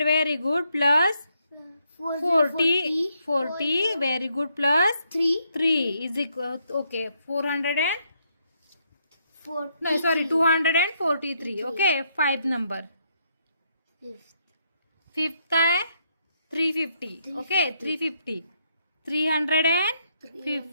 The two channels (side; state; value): both; inverted; correlation -0.75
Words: very good plus 40 very good plus 3 is equal. Okay, 243. Okay, 5 number. Fifth काय, 350. ओके, 350.